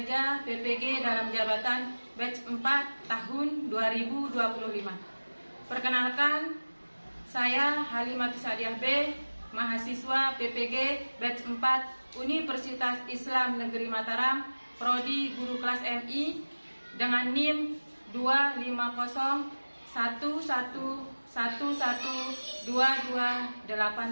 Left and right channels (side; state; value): both; inverted; correlation -1.00